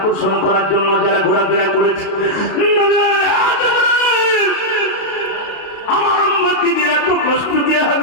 করার জন্য যারা ঘোরাফেরা করেছে, আমার উম্মতিরা তো কষ্ট দিয়ে হবে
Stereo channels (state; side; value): late; right; 32 ms